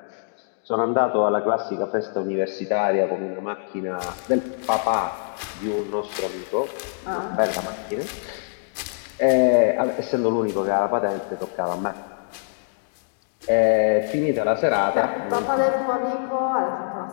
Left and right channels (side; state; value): right; silent; digital silence